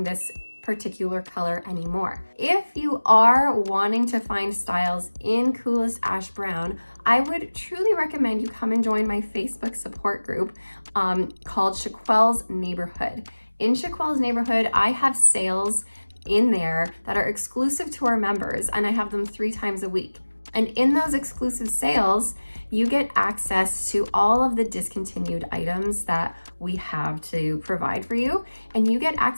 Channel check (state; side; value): inverted; both; correlation -1.00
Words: this particular color anymore. If you are wanting to find styles in Coolest Ash Brown, I would truly recommend you come and join my Facebook support group called Chiquel's Neighborhood. In Chiquel's Neighborhood, I have sales in there that are exclusive to our members, and I have them 3 times a week. And in those exclusive sales, you get access to all of the discontinued items that we have to provide for you, and you get